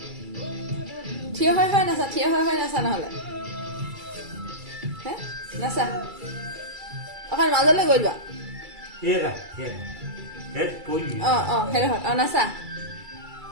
থিয় হৈ নাচা নহ'লে হে নাচা অকণ মাজলৈ গৈ যোৱা হেৰা হেড পৰি সেইটো নাচা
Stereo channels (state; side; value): late; left; 2.3 ms